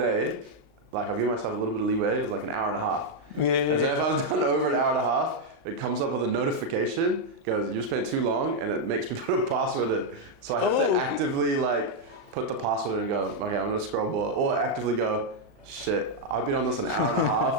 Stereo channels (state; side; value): late; left; 36 ms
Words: like I've given myself a little bit of leeway, it was like an hour and a half. And so if I was done over an hour and a half, it comes up with a notification, goes, you spent too long, and it makes me put a password in. So I have to actively like put the password in and go, okay, I'm gonna scroll more, or actively go, shit, I've been on this an hour and a